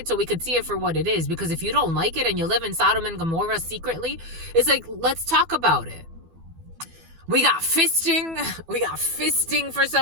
so we could see it for what it is. Because if you don't like it and you live in Sodom and Gomorrah secretly, it's like, let's talk about it. We got fisting. We got fisting for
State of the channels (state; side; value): late; left; 12 ms